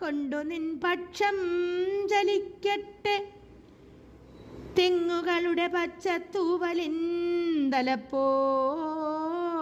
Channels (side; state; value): both; identical; correlation 1.00